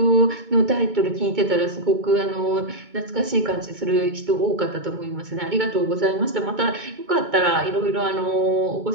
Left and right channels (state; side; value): late; left; 2.2 ms